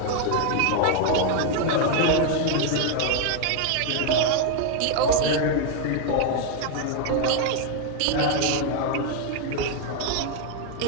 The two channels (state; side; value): different; both; correlation 0.01